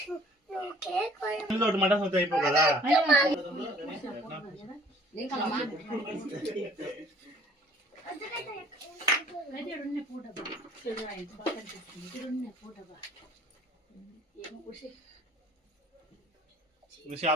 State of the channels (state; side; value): normal; both; correlation 0.55